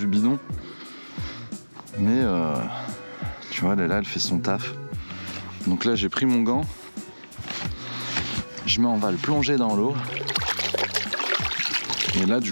bidon. Mais tu vois là elle fait son taf. Donc là j'ai pris mon gant. On va le plonger dans l'eau. Et là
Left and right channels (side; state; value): both; inverted; correlation -1.00